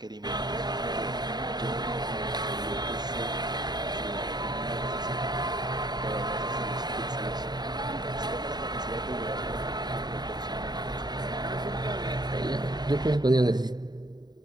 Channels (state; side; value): late; left; 0.20 ms